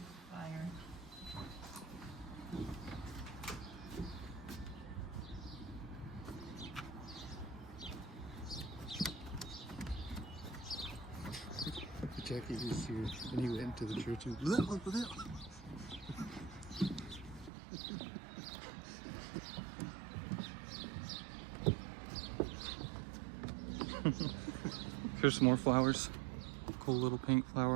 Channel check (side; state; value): left; drops out; at 17.5 s